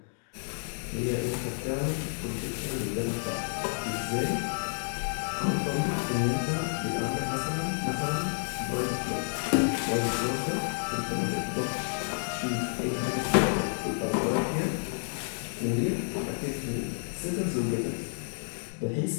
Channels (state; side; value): silent; right; digital silence